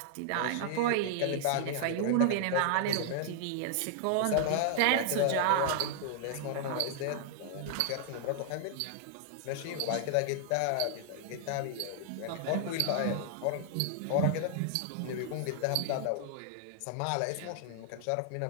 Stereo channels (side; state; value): both; different; correlation 0.00